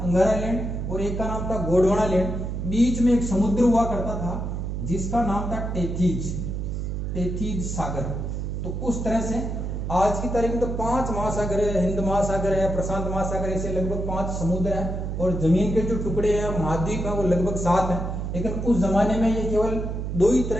अंगारा लैंड और एक का नाम था गोंडवाना लैंड। बीच में एक समुद्र हुआ करता था जिसका नाम था टेथीज सागर। तो उस तरह से आज की तारीख में तो 5 महासागर है, हिंद महासागर है, प्रशांत महासागर, ऐसे लगभग 5 समुद्र है और जमीन के जो टुकड़े हैं महाद्वीप है वो लगभग 7 है। लेकिन उस जमाने में ये केवल 2 ही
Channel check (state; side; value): noise; right; hum, 3 dB below the sound